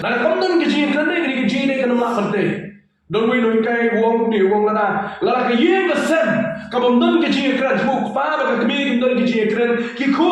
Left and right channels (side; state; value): both; identical; correlation 1.00